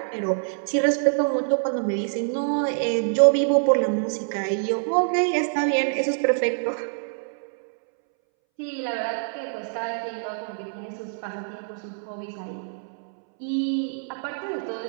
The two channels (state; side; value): silent; left; 61 dB below the other